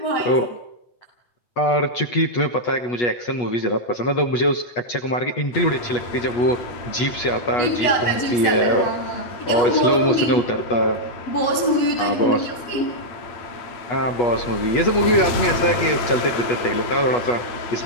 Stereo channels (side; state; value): right; late; 8.3 ms